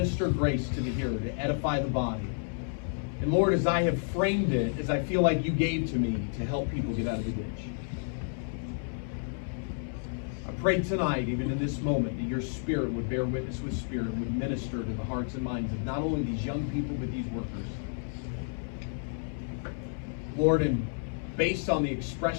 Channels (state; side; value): silent; right; digital silence